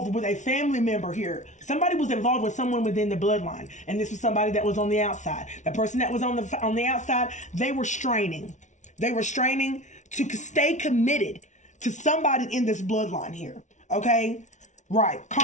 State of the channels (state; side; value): late; right; 0.35 ms